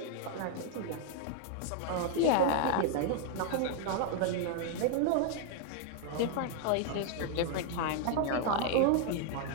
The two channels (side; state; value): both; different; correlation 0.00